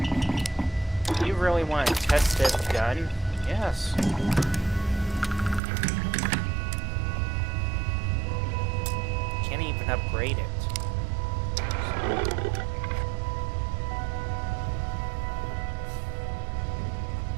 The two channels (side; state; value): left; drops out; at 5.6 s